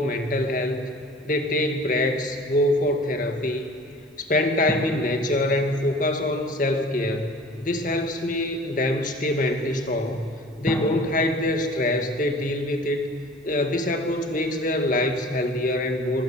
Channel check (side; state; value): both; normal; correlation 0.45